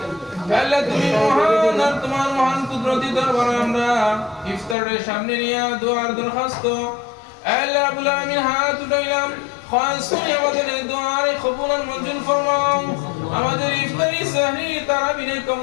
আল্লাহ তুমি মহান আর তোমার মহান কুদরতি দরবারে আমরা ইফতারের সামনে নিয়ে দোয়ার দরখাস্ত আল্লাহ রাব্বুল আলামিন হাত উঠাইলাম। খাস করে আমাদের এই দোয়ার কবুল আর মঞ্জুর ফরমাও। আমাদের ইফতারি সাহরি তারাবির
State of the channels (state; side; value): drops out; right; at 4.8 s